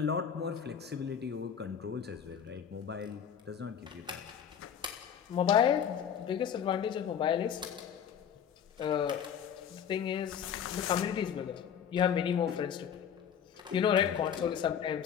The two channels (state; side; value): quieter; right; 8.3 dB